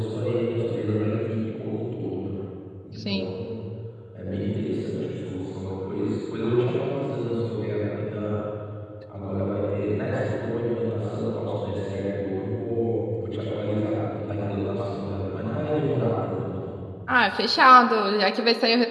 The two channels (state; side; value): identical; both; correlation 1.00